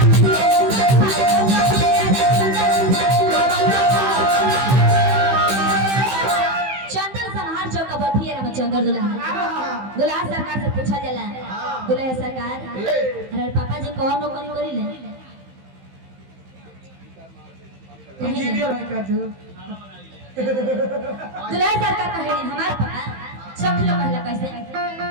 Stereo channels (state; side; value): late; left; 15 ms